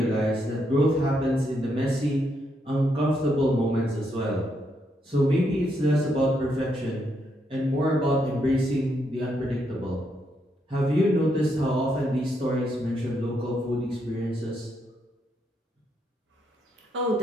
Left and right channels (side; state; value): both; normal; correlation 0.78